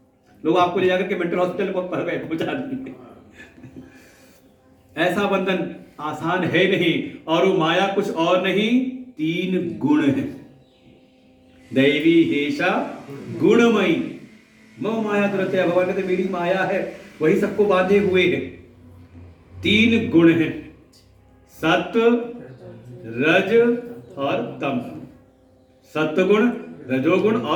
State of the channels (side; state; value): both; identical; correlation 1.00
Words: लोग आपको ले जाकर के मेंटल हॉस्पिटल पहुंचा देंगे। ऐसा बंधन आसान है नहीं। और वो माया कुछ और नहीं, 3 गुण है। दैवी हेषा गुणमयी मम माया दुरत्यया। भगवान कहते मेरी माया है, वही सबको बांधे हुए है। 3 गुण है, सत्व, रज और तम। सत्वगुण, रजोगुण